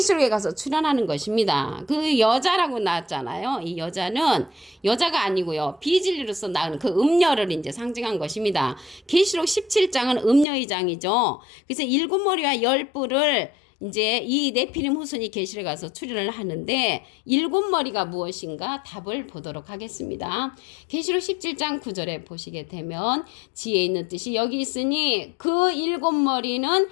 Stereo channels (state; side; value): drops out; right; at 10.5 s